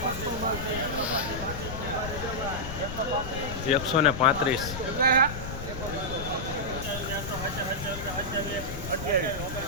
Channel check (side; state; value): left; noise; rumble, 8 dB below the sound